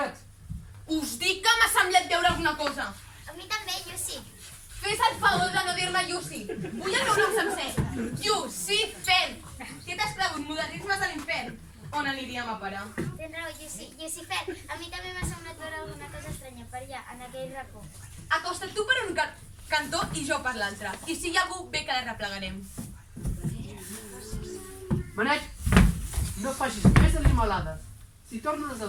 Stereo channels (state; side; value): identical; both; correlation 1.00